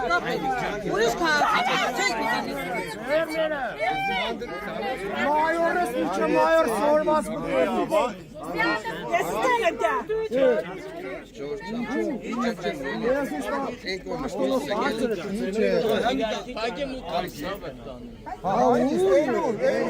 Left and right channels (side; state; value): both; identical; correlation 1.00